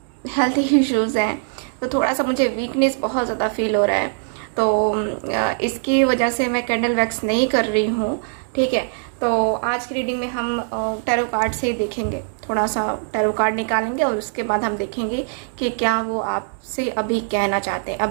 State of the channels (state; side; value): silent; left; digital silence